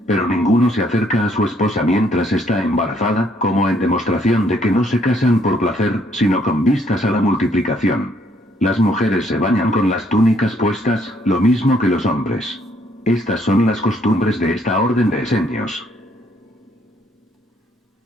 Pero ninguno se acerca a su esposa mientras está embarazada, como en demostración de que no se casan por placer, sino con vistas a la multiplicación. Las mujeres se bañan con las túnicas puestas, lo mismo que los hombres. Estas son las costumbres de esta orden de esenios.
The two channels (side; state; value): both; normal; correlation 0.68